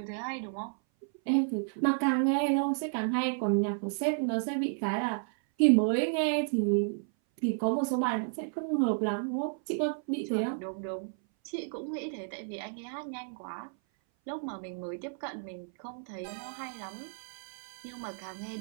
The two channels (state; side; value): silent; left; 56 dB below the other